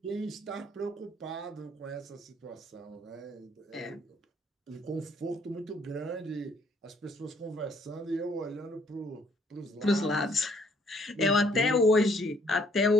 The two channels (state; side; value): normal; both; correlation 0.65